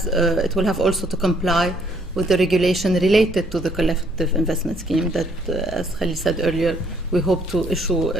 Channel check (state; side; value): normal; both; correlation 0.66